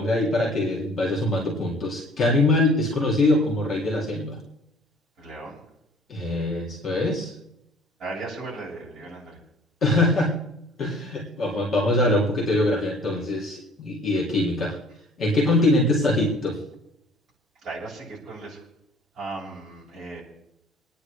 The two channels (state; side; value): normal; both; correlation 0.52